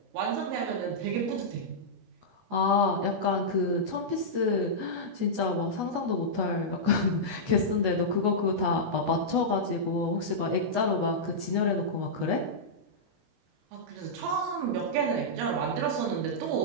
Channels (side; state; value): left; late; 14 ms